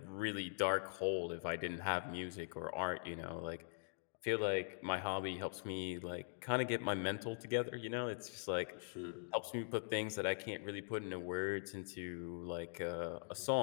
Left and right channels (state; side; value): silent; right; digital silence